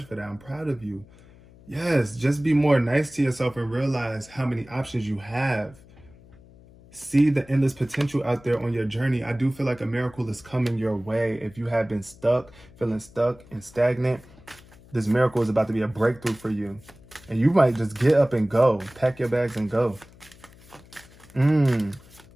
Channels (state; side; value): noise; left; hum, 24 dB below the sound